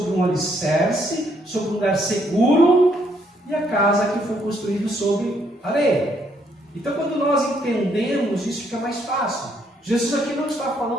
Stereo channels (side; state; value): both; normal; correlation 0.71